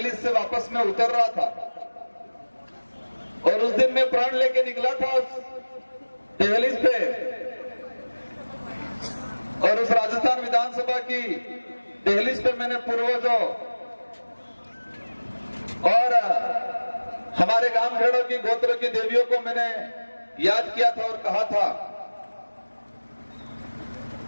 से वापस मैं उतर रहा था और उस दिन मैं प्राण लेके निकला था उस दहलीज पे, और उस राजस्थान विधानसभा की दहलीज पे मैंने पूर्वजों और हमारे गांव खेड़ों की गोत्रों की देवियों को मैंने याद किया था और कहा था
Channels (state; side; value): inverted; both; correlation -1.00